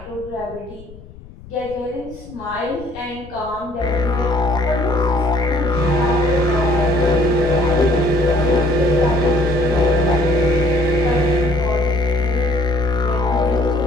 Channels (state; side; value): noise; left; rumble, 19 dB below the sound